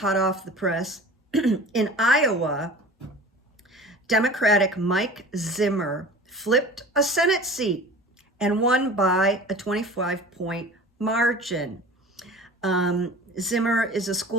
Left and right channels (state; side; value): normal; both; correlation 0.40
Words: off the press. In Iowa, Democratic Mike Zimmer flipped a Senate seat and won by a 25-point margin. Zimmer is a